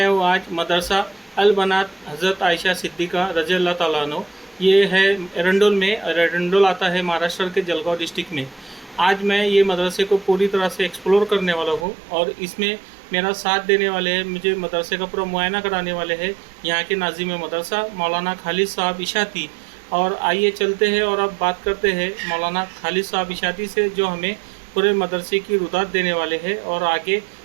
हूँ आज मदरसा अल बनात हज़रत आयशा सिद्दीक़ा रज़ी अल्लाह ताला अन्हो। ये है एरंडोल में, और एरंडोल आता है महाराष्ट्र के जलगांव डिस्ट्रिक्ट में। आज मैं ये मदरसे को पूरी तरह से एक्सप्लोर करने वाला हूँ और इसमें मेरा साथ देने वाले हैं, मुझे मदरसे का पूरा मुआयना कराने वाले हैं यहाँ के नाज़िम मदरसा मौलाना खालिद साहब इशाती। और आइए चलते हैं और अब बात करते हैं मौलाना खालिद साहब इशाती से, जो हमें पूरे मदरसे की रुदात देने वाले हैं और आगे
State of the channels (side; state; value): left; drops out; at 11.9 s